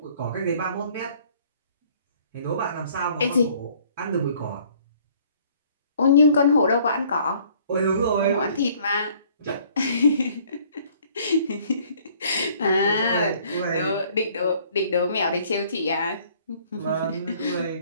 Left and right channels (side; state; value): both; inverted; correlation -0.58